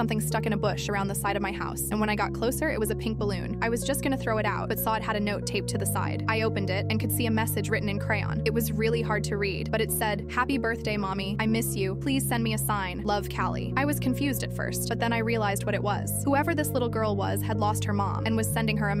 stuck in a bush around the side of my house, and when I got closer, it was a pink balloon. I was just gonna throw it out, but saw it had a note taped to the side. I opened it and could see a message written in crayon. It was really hard to read, but it said, "Happy birthday, Mommy. I miss you. Please send me a sign. Love, Callie." I was confused at first, but then I realized what it was. Whoever this little girl was had lost her mom and was sending her a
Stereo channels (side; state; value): both; identical; correlation 1.00